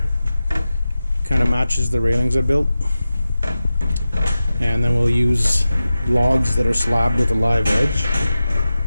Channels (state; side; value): inverted; both; correlation -0.94